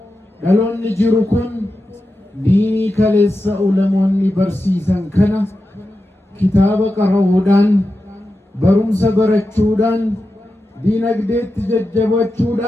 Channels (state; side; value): normal; both; correlation 0.91